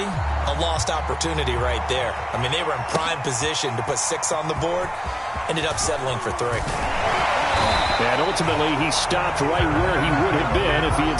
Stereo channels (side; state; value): both; identical; correlation 1.00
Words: a lost opportunity right there. I mean, they were in prime position to put 6 on the board, ended up settling for 3. And ultimately, he stopped right where he would have been if he had